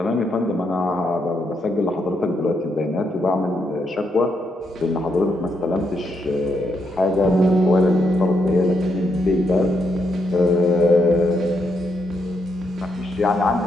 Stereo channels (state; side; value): normal; both; correlation 0.79